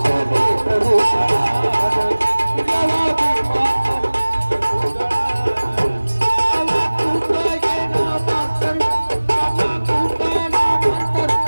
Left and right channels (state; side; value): inverted; both; correlation -1.00